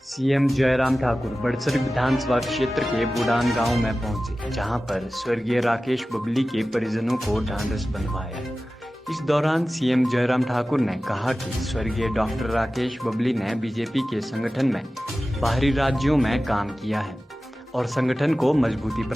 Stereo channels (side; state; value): both; normal; correlation 0.95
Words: CM Jairam Thakur Badsar विधानसभा क्षेत्र के बुडान गांव में पहुंचे, जहां पर स्वर्गीय राकेश बबली के परिजनों को ढांढस बंधवाया। इस दौरान सीएम जयराम ठाकुर ने कहा कि स्वर्गीय डॉक्टर राकेश बबली ने बीजेपी के संगठन में बाहरी राज्यों में काम किया है और संगठन को मजबूती